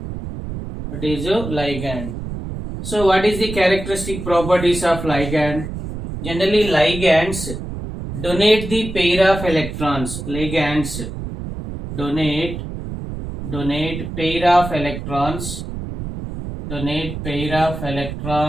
What is a ligand? So what is the characteristic properties of ligand? Generally ligands donate the pair of electrons. Ligands donate pair of electrons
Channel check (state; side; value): noise; right; rumble, 7 dB below the sound